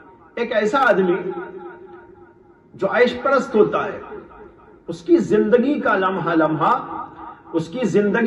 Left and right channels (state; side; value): identical; both; correlation 1.00